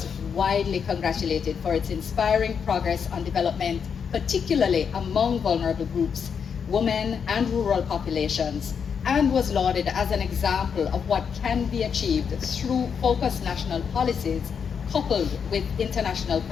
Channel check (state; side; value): quieter; right; 6.8 dB